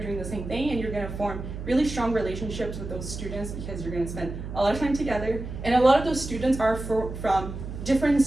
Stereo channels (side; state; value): right; noise; hum, 8 dB below the sound